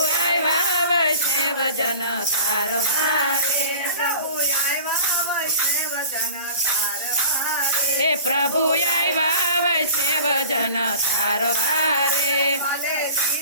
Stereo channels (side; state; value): both; inverted; correlation -0.41